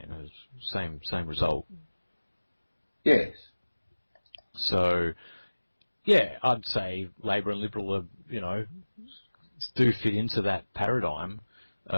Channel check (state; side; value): inverted; both; correlation -1.00